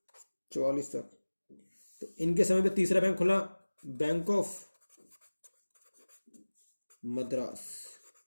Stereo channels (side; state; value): both; inverted; correlation -1.00